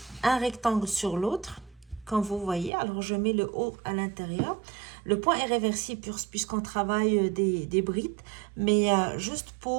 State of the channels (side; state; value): left; drops out; at 2.7 s